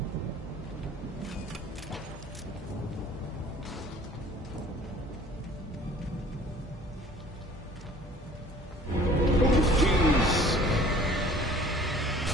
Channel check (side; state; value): both; normal; correlation 0.51